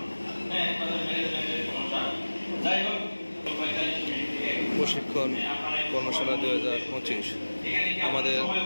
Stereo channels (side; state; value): both; inverted; correlation -1.00